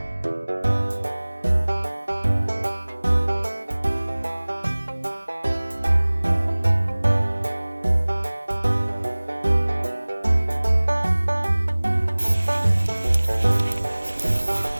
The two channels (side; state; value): both; inverted; correlation -1.00